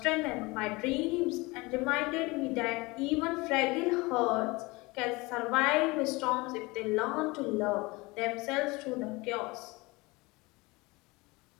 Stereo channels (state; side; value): quieter; right; 23.7 dB